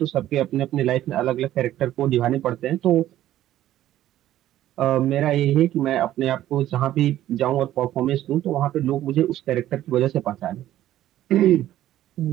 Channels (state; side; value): quieter; left; 13.2 dB